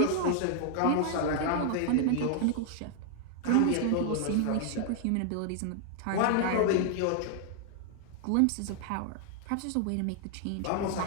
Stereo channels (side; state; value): both; different; correlation 0.00